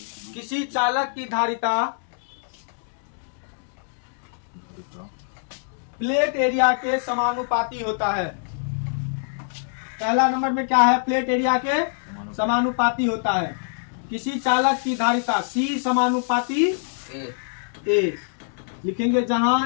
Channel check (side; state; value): right; silent; digital silence